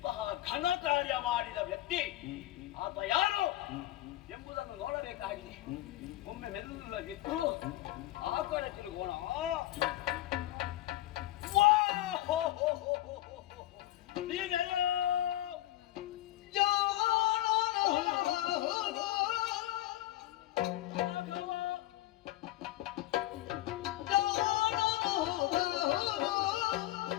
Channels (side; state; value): right; quieter; 15.3 dB